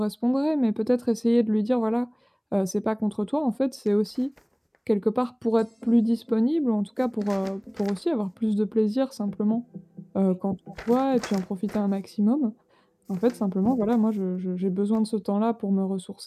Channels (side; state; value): both; identical; correlation 1.00